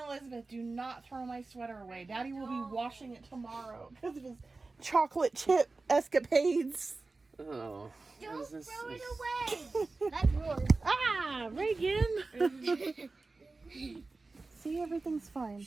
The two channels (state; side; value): quieter; left; 3.6 dB